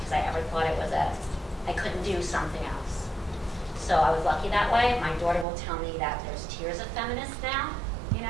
I ever thought it was I couldn't do something else. So I was lucky that way. My daughter will tell me that there's tiers of feminists now,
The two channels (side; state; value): left; drops out; at 5.5 s